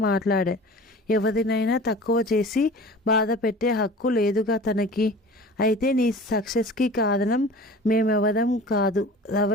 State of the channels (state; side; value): normal; both; correlation 0.40